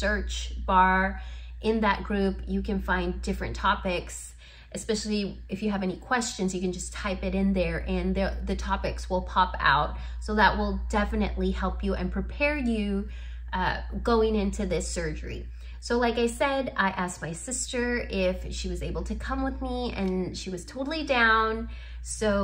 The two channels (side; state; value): both; identical; correlation 1.00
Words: bar in that group, you can find different topics. Especially if you have any questions, you can just type it in there and the topics will pop out. So that will definitely help you and prepare you going into this surgery. So like I said, I asked my sister if she was able to come with me, and she was totally down.